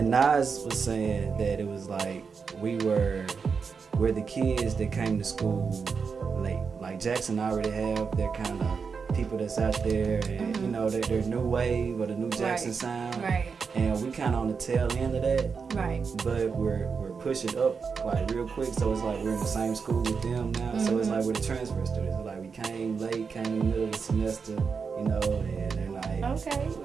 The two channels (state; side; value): quieter; left; 5.5 dB